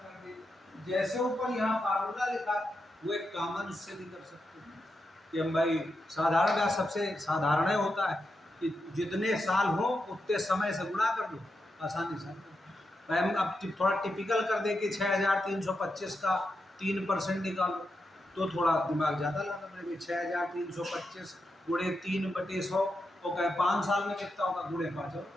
दे, जैसे ऊपर यहाँ फार्मूला लिखा वो एक कॉमन उससे भी कर सकते हैं कि हम भाई साधारण ब्याज सबसे साधारण होता है कि जितने साल हो उतने समय से गुणा कर दो, आसानी से। भाई हम अब थोड़ा टिपिकल कर दे कि 6325 का 3% निकालो, तो थोड़ा दिमाग ज़्यादा लगा मेरे। 6325 गुणे 3/100 तो कहे 5 साल में कितना होगा, गुणे 5 और,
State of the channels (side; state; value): both; normal; correlation 0.86